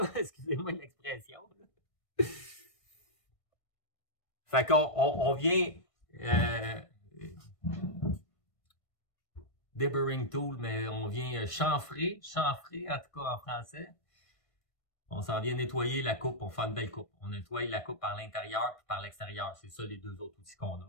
Excusez-moi l'expression. Fait qu'on vient deburring tool, mais on vient chanfrer en tout cas en français. On s'en vient nettoyer la coupe pour faire une belle coupe. On nettoie la coupe par l'intérieur et par l'extérieur. C'est ça les deux autres outils qu'on a.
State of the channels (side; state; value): right; late; 1.6 ms